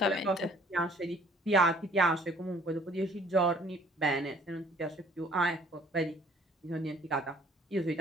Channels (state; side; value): normal; both; correlation 0.56